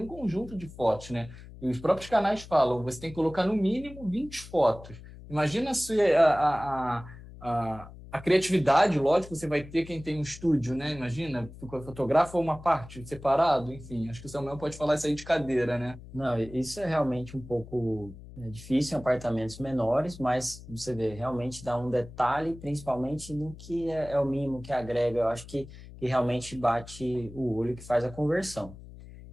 conjunto de fotos, né? E os próprios canais falam, você tem que colocar no mínimo 20 fotos. Imagina se a criatividade, lógico, você vai ter quem tem um estúdio, né? Imagina, fotografa uma parte separado, enfim. Acho que o Samuel pode falar isso aí de cadeira, né? Não, isso é realmente um pouco difícil em apartamentos menores, mas você vê, realmente dá um detalhe, principalmente no que é o mínimo que agrega. Eu acho que realmente bate o olho, que faz a conversão.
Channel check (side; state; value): left; noise; hum, 16 dB below the sound